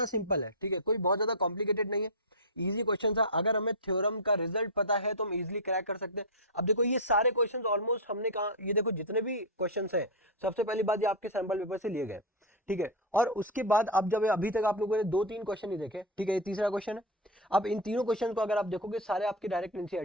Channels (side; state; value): both; normal; correlation 0.03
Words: सिंपल है. ठीक है, कोई बहुत ज्यादा कॉम्प्लिकेटेड नहीं है, इजी क्वेश्चन था. अगर हमें थ्योरम का रिजल्ट पता है तो हम इजीली क्रैक कर सकते हैं. अब देखो ये सारे क्वेश्चंस ऑलमोस्ट हमने कहा, ये देखो जितने भी क्वेश्चंस हैं, सबसे पहली बात ये आपके सैंपल पेपर से लिए गए. ठीक है, और उसके बाद अब जब अभी तक आप लोगों ने 2-3 क्वेश्चन ही देखे, ठीक है, ये तीसरा क्वेश्चन है. अब इन तीनों क्वेश्चन को अगर आप देखोगे सारे आपके डायरेक्ट